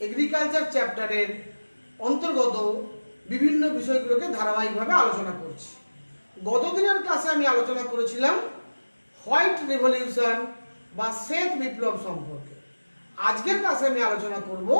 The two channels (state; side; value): inverted; both; correlation -1.00